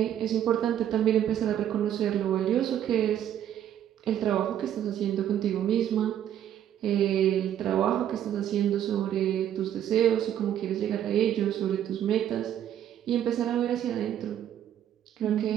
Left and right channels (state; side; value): quieter; left; 10.6 dB